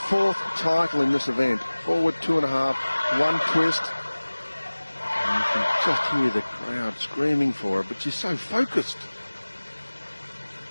title in this event. Forward 2.5, 1 twist. And you can just hear the crowd screaming for her, but she's so focused.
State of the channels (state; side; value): inverted; both; correlation -1.00